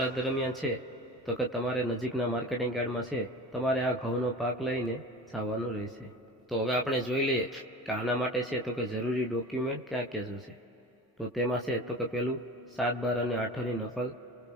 દરમિયાન છે તો કે તમારે નજીકના માર્કેટિંગ યાર્ડમાં છે તમારે આ ઘઉંનો પાક લઈને જવાનું રહેશે। તો હવે આપણે જોઈ લઈએ કે આના માટે છે તો કે જરૂરી ડોક્યુમેન્ટ ક્યાં ક્યાં જોશે। તો તેમાં છે તો કે પહેલું 7, 12 અને 8ની નકલ,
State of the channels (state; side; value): normal; both; correlation 0.35